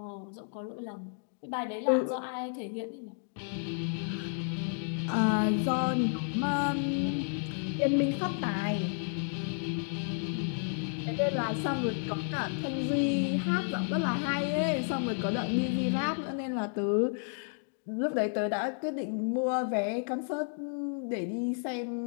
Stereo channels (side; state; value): right; silent; 57 dB below the other